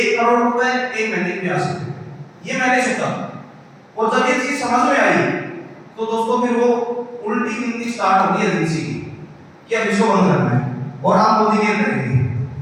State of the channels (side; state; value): both; identical; correlation 1.00